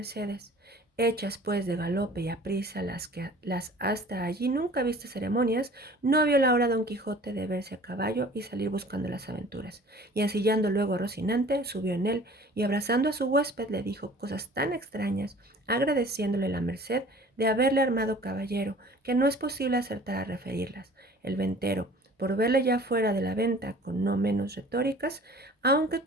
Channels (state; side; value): normal; both; correlation 0.47